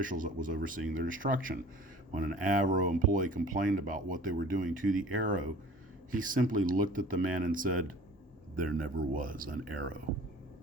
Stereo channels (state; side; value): normal; both; correlation 0.46